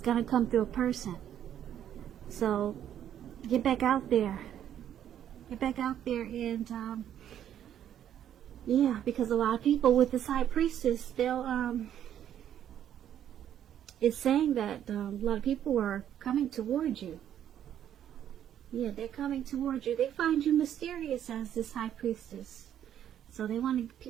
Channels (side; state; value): left; quieter; 10.3 dB